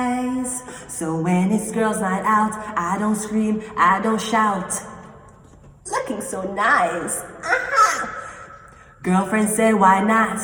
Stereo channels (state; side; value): identical; both; correlation 1.00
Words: So when it's girls' night out, I don't scream, I don't shout. Looking so nice. Aha! Girlfriend said, why not?